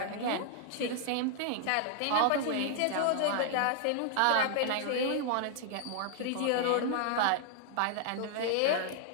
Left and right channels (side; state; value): both; different; correlation 0.00